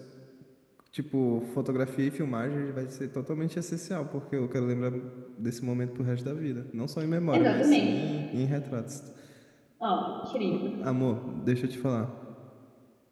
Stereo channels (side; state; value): both; identical; correlation 1.00